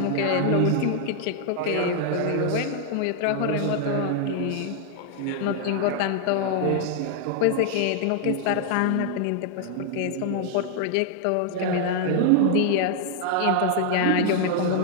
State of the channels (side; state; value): both; different; correlation 0.00